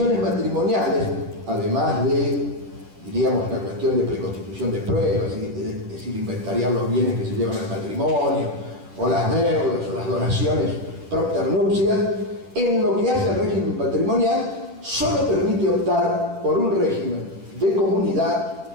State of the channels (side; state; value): left; late; 10 ms